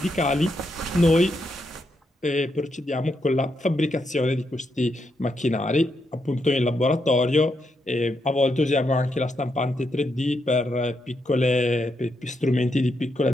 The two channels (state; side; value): normal; both; correlation 0.81